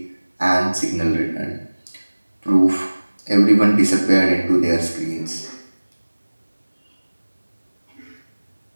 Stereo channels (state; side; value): inverted; both; correlation -1.00